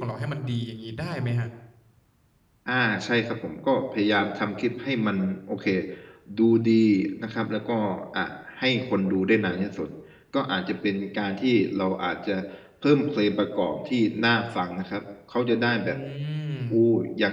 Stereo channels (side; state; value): both; identical; correlation 1.00